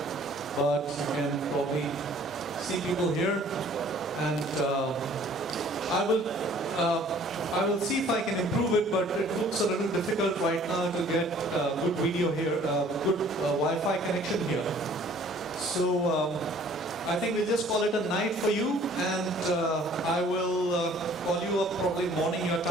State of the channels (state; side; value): normal; both; correlation 0.54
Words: But you can probably see people here, and I will see if I can improve it. But it looks a little difficult right now to get good video here, good Wi-Fi connection here. So. I think we'll just call it a night for you, and I will call you up probably morning your